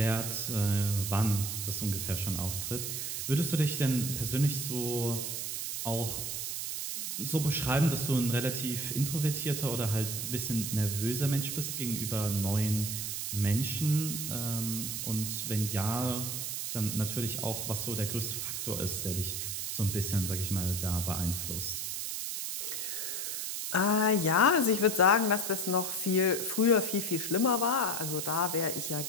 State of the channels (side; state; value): right; noise; hiss, 3 dB below the sound